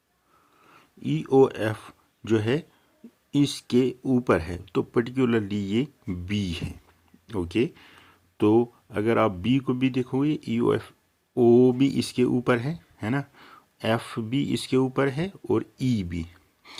ई ओ एफ जो है इसके ऊपर है, तो पर्टिकुलरली ये बी है। ओके, तो अगर आप बी को भी देखोगे, ई ओ एफ, ओ भी इसके ऊपर है ना, एफ भी इसके ऊपर है और ई भी।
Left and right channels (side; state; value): both; identical; correlation 1.00